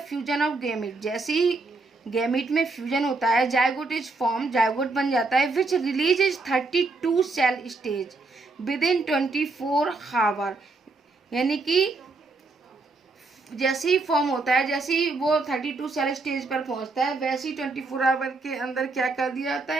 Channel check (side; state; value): left; quieter; 3.6 dB